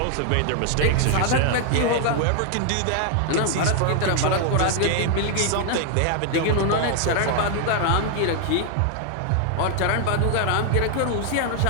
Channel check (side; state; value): both; different; correlation 0.00